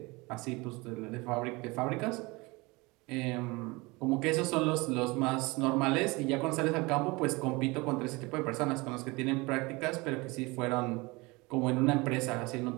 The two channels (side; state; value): left; quieter; 24.6 dB